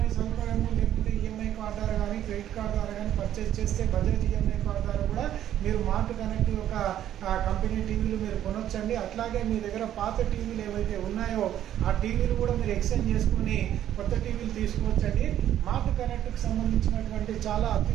సౌకర్యము, లేకుంటే ఈఎంఐ కార్డు ద్వారా కానీ క్రెడిట్ కార్డు ద్వారా కానీ పర్చేస్ చేస్తే బజాజ్ ఈఎంఐ కార్డు ద్వారా కూడా మీరు మార్ట్ కనెక్ట్ యొక్క కంపెనీ టీవీలు మీరు కొనొచ్చండి. అట్లాగే మీ దగ్గర పాత టీవీలు ఏవైతే ఉన్నాయో ఆ టీవీలు కూడా మీరు ఎక్స్చేంజ్ చేసుకుని కొత్త టీవీలు తీసుకోవచ్చండి. మార్ట్ కనెక్ట్కి సంబంధించినటువంటి చాలా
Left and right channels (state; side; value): quieter; left; 11.3 dB